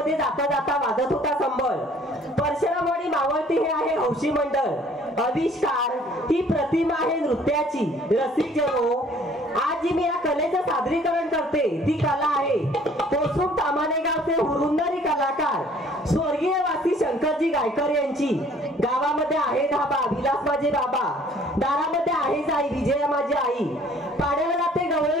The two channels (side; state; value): both; normal; correlation 0.56